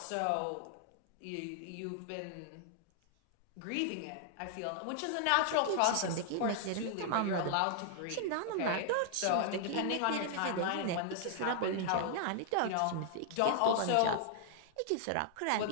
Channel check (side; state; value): both; different; correlation -0.01